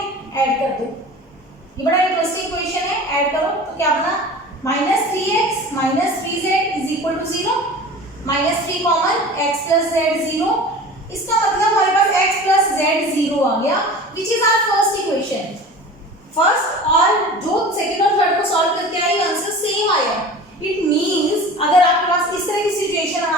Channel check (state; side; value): normal; both; correlation 0.38